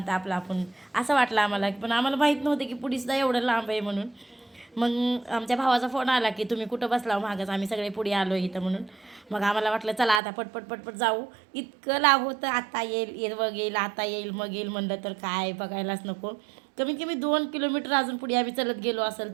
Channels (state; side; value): drops out; left; at 10.2 s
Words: आपलं आपण, असं वाटलं आम्हाला. पण आम्हाला माहीत नव्हतं की पुढेसुद्धा एवढं लांब आहे म्हणून. मग आमच्या भावाचा फोन आला की तुम्ही कुठं बसला मागच, आम्ही सगळे पुढे आलो इथं म्हणून. मग आम्हाला वाटलं चला आता पटपट पटपट जाऊ. इतकं लांब होतं, आता येईल मग येईल, आता येईल मग येईल म्हणलं तर काय बघायलाच नको. कमीत कमी 2 किलोमीटर अजून पुढे आम्ही चलत गेलो